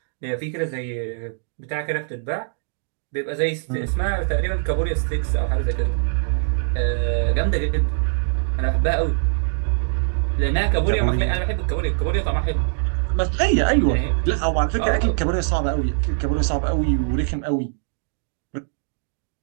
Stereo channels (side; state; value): left; silent; digital silence